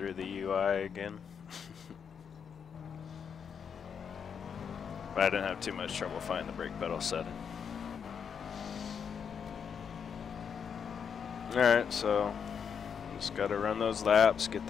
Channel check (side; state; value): right; quieter; 7.0 dB